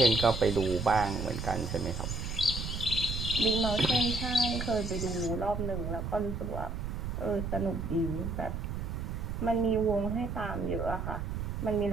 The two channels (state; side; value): noise; right; rumble, 4 dB below the sound